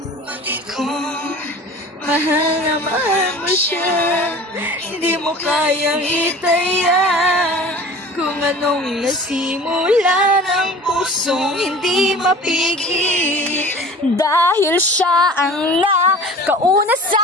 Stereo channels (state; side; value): normal; both; correlation 0.42